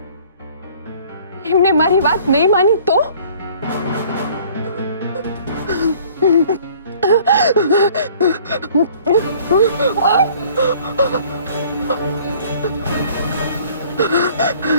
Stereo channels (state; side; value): inverted; both; correlation -0.53